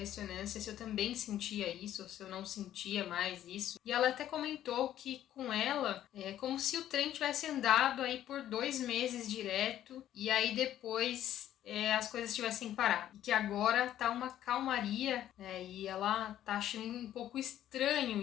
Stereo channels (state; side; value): quieter; right; 11.9 dB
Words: se eu também sentia isso, ou se eu não sentia mais isso. E ela até comentou que com ela é como se o trem tivesse andado aí por 2 meses direto, e aí depois as coisas tivessem parado. E que agora tá uma calmaria, e ela tá achando um pouco estranho